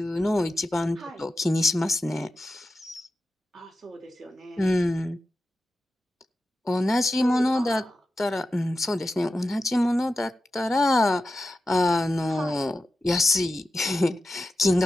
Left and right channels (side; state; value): both; normal; correlation 0.92